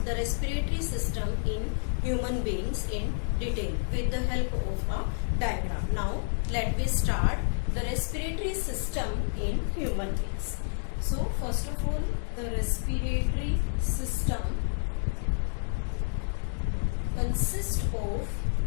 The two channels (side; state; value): right; silent; digital silence